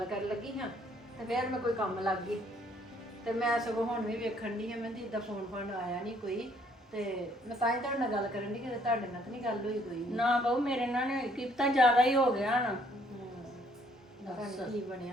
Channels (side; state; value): both; normal; correlation 0.64